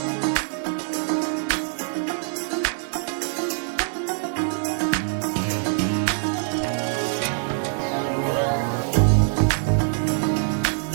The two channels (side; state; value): left; silent; digital silence